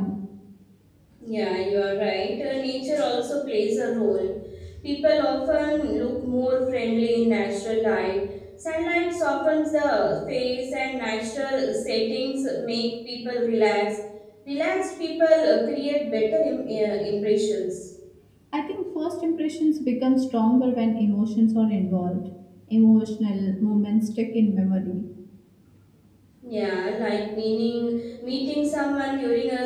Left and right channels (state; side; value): identical; both; correlation 1.00